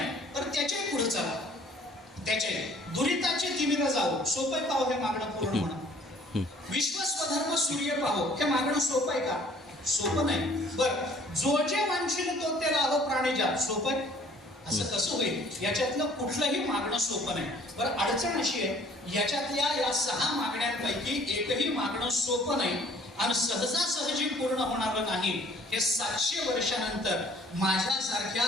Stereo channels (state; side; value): normal; both; correlation 0.56